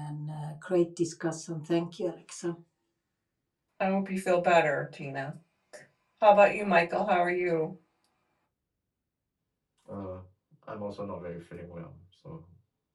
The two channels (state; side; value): identical; both; correlation 1.00